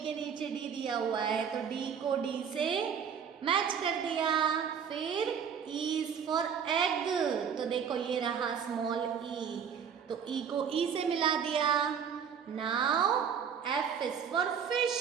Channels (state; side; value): quieter; left; 7.3 dB